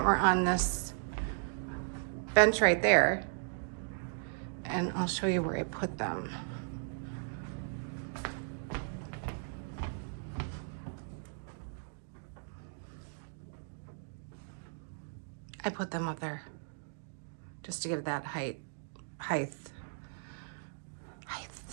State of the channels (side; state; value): left; silent; digital silence